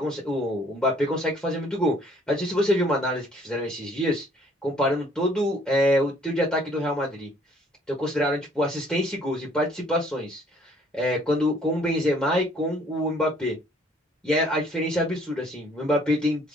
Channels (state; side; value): normal; both; correlation 0.60